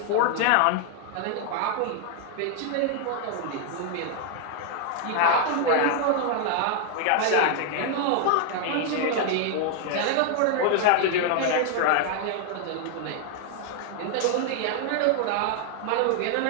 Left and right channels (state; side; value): different; both; correlation 0.00